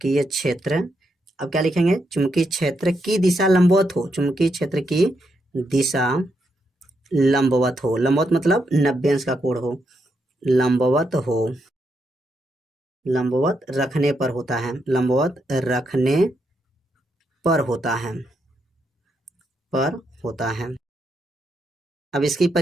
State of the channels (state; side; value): normal; both; correlation 0.80